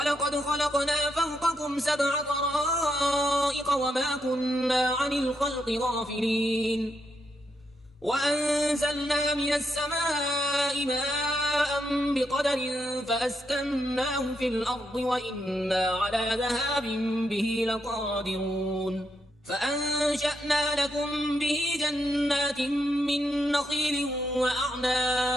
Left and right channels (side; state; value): both; normal; correlation 0.81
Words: خلقنا فوقكم 7 طرائق وما كنا عن الخلق غافلين. وأنزلنا من السماء ماء بقدر فأسكناه في الأرض وإنا على ذهاب به لقادرون. فأنشأنا لكم به جنات من نخيل